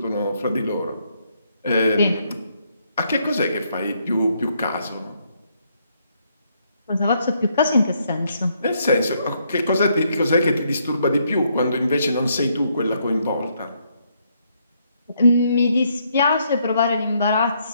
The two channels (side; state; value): both; inverted; correlation -0.73